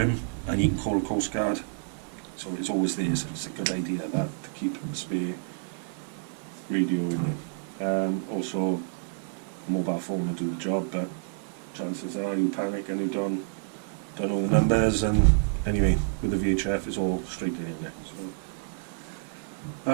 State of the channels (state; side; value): silent; left; 59 dB below the other